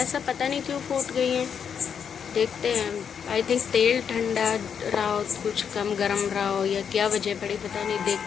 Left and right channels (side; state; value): right; quieter; 7.4 dB